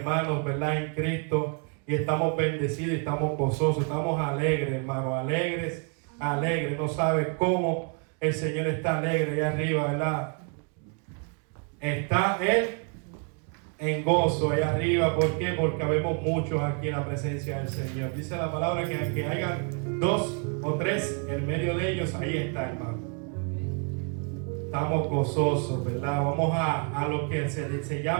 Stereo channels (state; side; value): quieter; left; 37.6 dB